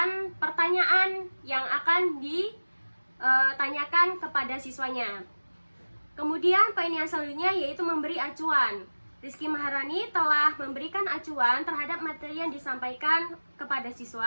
pertanyaan yang akan ditanyakan kepada siswanya. Kemudian poin yang selanjutnya yaitu memberi acuan. Rizky Maharani telah memberikan acuan terhadap materi yang disampaikan kepada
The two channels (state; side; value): inverted; both; correlation -1.00